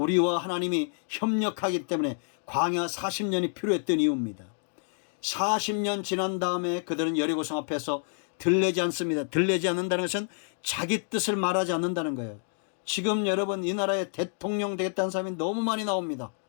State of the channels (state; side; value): silent; right; 59 dB below the other